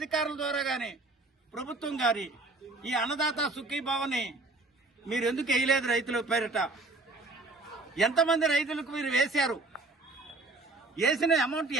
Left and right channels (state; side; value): quieter; left; 3.2 dB